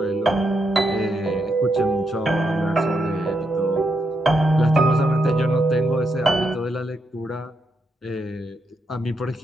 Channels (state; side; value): normal; both; correlation 0.81